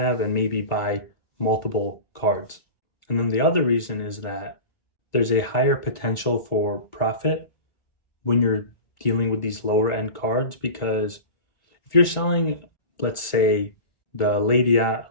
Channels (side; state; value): right; late; 2.2 ms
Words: and maybe buy multiple cards. And then the other reason is that there's a higher potential for profit when you're dealing with these lower end cards, because if you're selling, let's say, the Lady